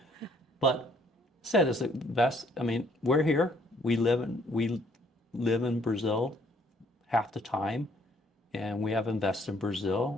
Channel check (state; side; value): normal; both; correlation 0.64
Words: said it's the best. I mean, we're here. We live in Brazil half the time, and we have invested in